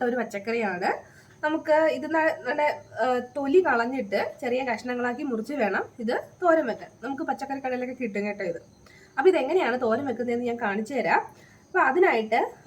ഒരു പച്ചക്കറിയാണ്. നമുക്ക് ഇത് നല്ല തൊലി കളഞ്ഞിട്ട് ചെറിയ കഷ്ണങ്ങളാക്കി മുറിച്ച് വേണം ഇത് തോരൻ വെക്കാൻ. നമുക്ക് പച്ചക്കറി കടയിലൊക്കെ കിട്ടും കേട്ടോ ഇത്. അപ്പോൾ ഇതെങ്ങനെയാണ് തോരൻ വെക്കുന്നതെന്ന് ഞാൻ കാണിച്ചു തരാം. അപ്പോൾ അതിനായിട്ട്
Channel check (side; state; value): both; identical; correlation 1.00